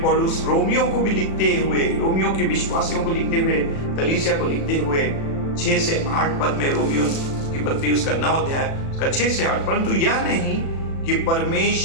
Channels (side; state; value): right; late; 36 ms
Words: पौलुस रोमियो को भी लिखते हुए, रोमियो के विश्वासियों को लिखते हुए, कलीसिया को लिखते हुए 6 से 8 पद में, रोमियो की पत्री उसका 9 अध्याय उसका 6 से 8, परंतु यह नहीं कि